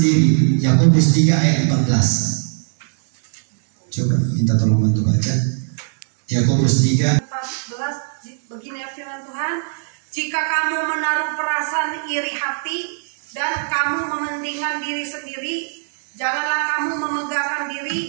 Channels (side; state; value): left; silent; digital silence